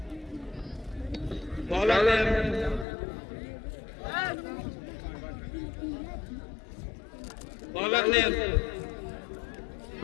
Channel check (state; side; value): drops out; right; at 2.9 s